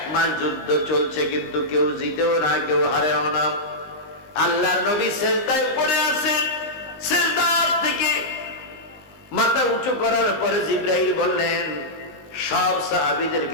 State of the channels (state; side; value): late; right; 19 ms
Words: মাস যুদ্ধ চলছে, কিন্তু কেউ জিতেও না, কেউ হারেও না। আল্লাহর নবী সিজদায় পড়ে আছেন। সিজদা থেকে মাথা উঁচু করার পরে জিবরাইল বললেন, সব